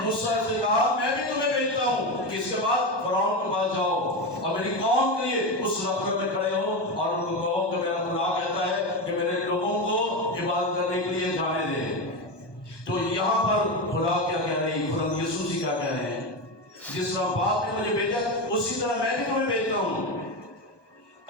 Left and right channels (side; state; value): right; late; 1.2 ms